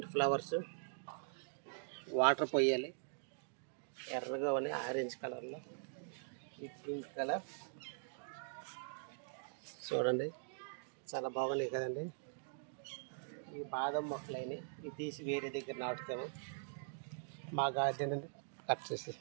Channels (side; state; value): left; silent; digital silence